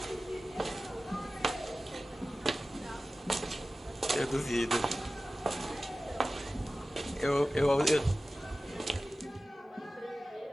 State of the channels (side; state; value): both; normal; correlation 0.96